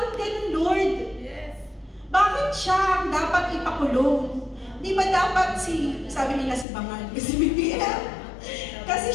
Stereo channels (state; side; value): drops out; right; at 6.7 s